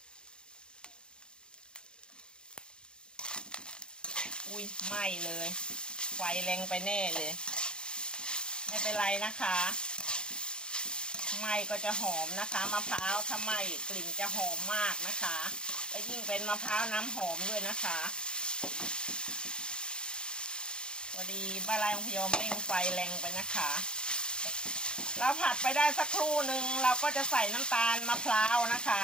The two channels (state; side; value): late; right; 0.050 ms